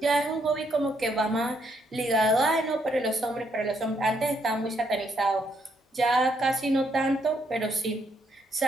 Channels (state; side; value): normal; both; correlation 0.74